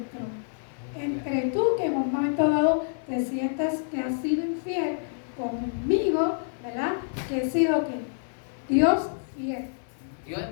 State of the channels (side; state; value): right; silent; 55 dB below the other